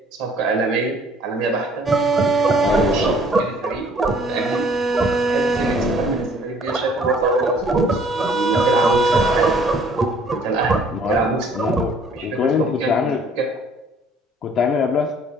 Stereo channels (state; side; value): normal; both; correlation 0.57